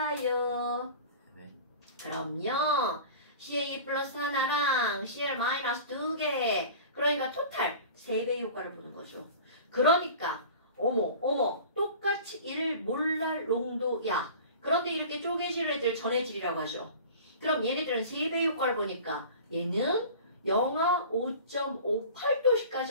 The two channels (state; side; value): inverted; both; correlation -0.39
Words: 네. 그럼요. CA 플러스 하나랑 CL 마이너스 2개. 그러니까 토탈 3배의 효과를 보는 거죠. 그러니까 어머 똑같이 1 몰랄 농도야. 그런데 이렇게 쪼개질 애들 전해질이라고 하죠. 그럼 얘네들은 3배의 효과를 보니까 얘는 영하